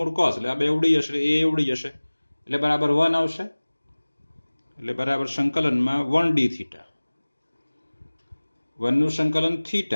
કોસ એટલે આ બે ઉડી જશે, એ ઉડી જશે એટલે બરાબર 1 આવશે. એટલે બરાબર સંકલનમાં 1d થીટા, 1 નું સંકલન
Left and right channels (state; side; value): inverted; both; correlation -1.00